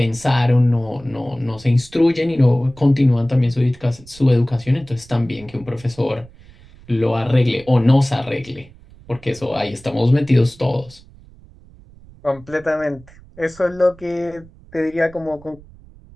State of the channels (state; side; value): noise; right; rumble, 23 dB below the sound